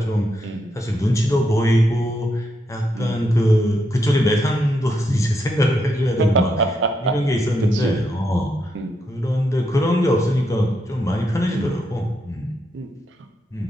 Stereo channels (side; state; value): both; normal; correlation 0.81